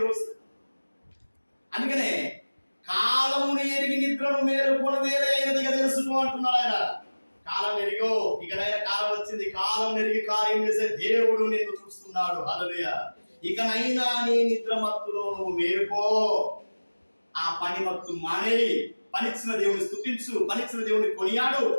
అందుకనే కాలమును ఎరిగి నిద్రను మేలుకొని వేరే అయినదిగా తెలుసుకో అంటున్నాడు ఆయన. కాలం ఎరిగో, ఇకనైనా కాలం వచ్చింది. కాలం ఎరిగి కార్యం చేసే దేవుడు నిన్ను చూస్తున్నాడు. హల్లెలూయా. ఇకనైనా నీ నిద్ర మత్తులో నువ్వు మేలుకో. ఆ పని మత్తు మానేయి. పనిచ్చిన దేవుని స్తుతించు, పనిచ్చిన దేవుని కొనియాడు,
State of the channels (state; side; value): inverted; both; correlation -1.00